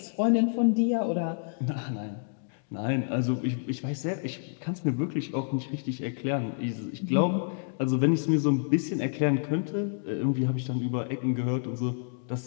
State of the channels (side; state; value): right; silent; digital silence